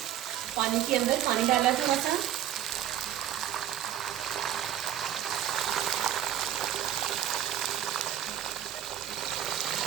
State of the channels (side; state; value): left; quieter; 11.4 dB